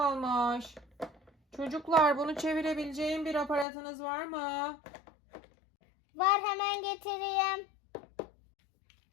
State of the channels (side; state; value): right; drops out; at 3.7 s